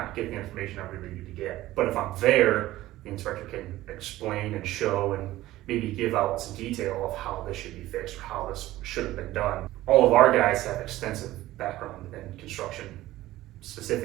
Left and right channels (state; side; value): quieter; left; 16.0 dB